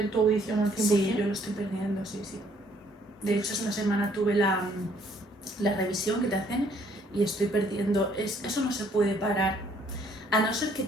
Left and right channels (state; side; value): normal; both; correlation 0.64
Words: tu audición al 100%. Sí, yo lo estoy perdiendo, sí. De hecho, esta semana tuve la revisión que te hacen y estoy perdiendo. Eso no se puede parar, a no ser que